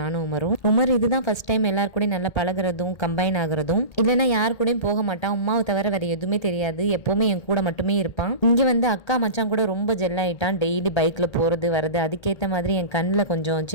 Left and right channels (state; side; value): late; right; 1.8 ms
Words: நானும் உமர் இதுதான் ஃபர்ஸ்ட் டைம் எல்லாரு கூடயும் நல்லா பழகிறதும் கம்பைன் ஆகுறதும். இல்லைன்னா யாரு கூடயும் போக மாட்டான். உமாவை தவிர வேற எதுவுமே தெரியாது. எப்பவுமே என் கூட மட்டுமே இருப்பான். இங்கே வந்து அக்கா மச்சான் கூட ரொம்ப ஜெல் ஆயிட்டான். டெய்லி பைக்கில் போகிறது வருது. அதுக்கேற்ற மாதிரி என் கண்ணில் கொஞ்சம்